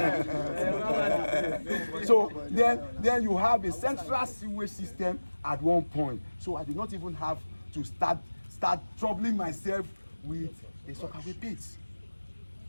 So then you have a central sewage system at one point. So I did not even have to start troubling myself with a sockaway pit.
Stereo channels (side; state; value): both; inverted; correlation -1.00